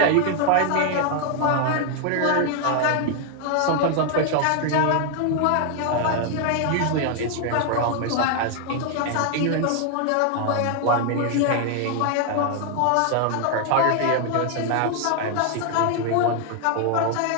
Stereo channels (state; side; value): different; both; correlation 0.00